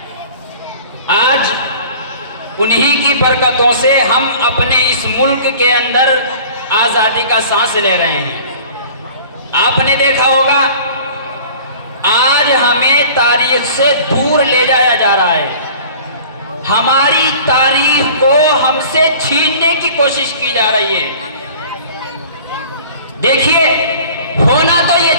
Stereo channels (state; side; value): inverted; both; correlation -0.45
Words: آج انہی کی برکتوں سے ہم اپنے اس ملک کے اندر آزادی کا سانس لے رہے ہیں۔ آپ نے دیکھا ہوگا، آج ہمیں تاریخ سے دور لے جایا جا رہا ہے، ہماری تاریخ کو ہم سے چھیننے کی کوشش کی جا رہی ہے۔ دیکھیے، ہونا تو